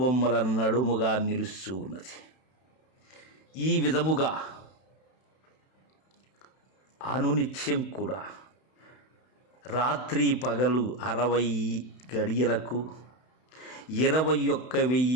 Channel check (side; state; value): right; late; 31 ms